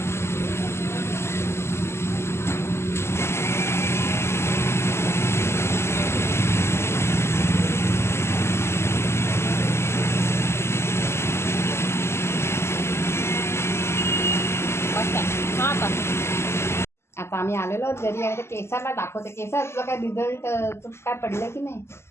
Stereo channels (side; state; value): right; late; 0.12 ms